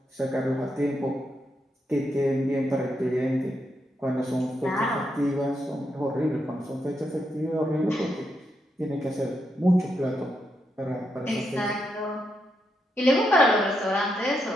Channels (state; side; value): normal; both; correlation 0.82